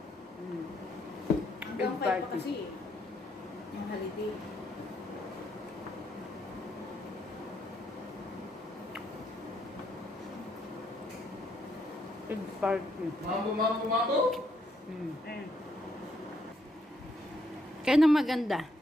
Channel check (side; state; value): both; normal; correlation 0.74